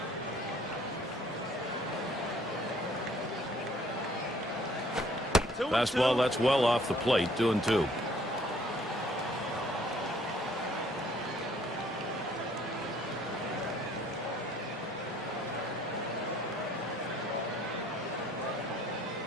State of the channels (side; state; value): both; normal; correlation 0.59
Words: Fastball, that's well off the plate, 2-2.